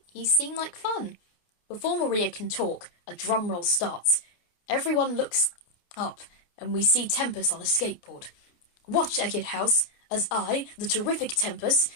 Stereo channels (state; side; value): late; right; 28 ms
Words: You seem like fun. Before Maria can talk, a drum roll starts. Everyone looks up, and we see Tempest on a skateboard. Watch, Eckett House, as I, the terrific Tempest,